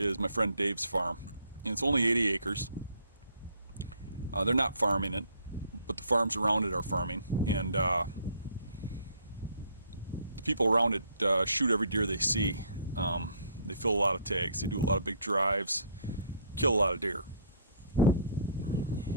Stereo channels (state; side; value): inverted; both; correlation -0.61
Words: my friend Dave's farm. And it's only 80 acres. They're not farming it, but the farms around it are farming. And the people around it shoot every deer they see. They fill a lot of tags. They do a lot of big drives, kill a lot of deer.